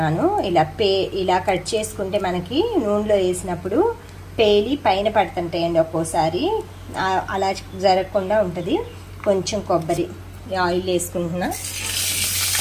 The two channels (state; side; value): identical; both; correlation 1.00